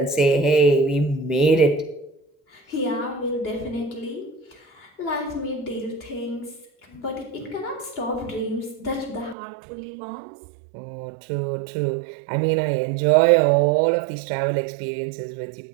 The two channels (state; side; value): drops out; left; at 9.3 s